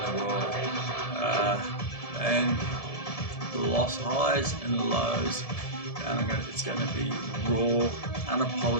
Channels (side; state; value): right; late; 1.7 ms